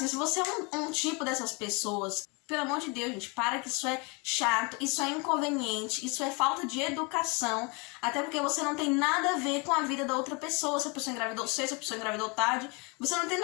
se você é um tipo dessas pessoas, pelo amor de Deus, gente, para, que isso é chato, isso é inconveniente, isso é falta de educação, até porque você não tem nada a ver com a vida da outra pessoa. Se a pessoa engravidou cedo, se a pessoa engravidou tarde, você não tem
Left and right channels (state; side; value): quieter; right; 30.7 dB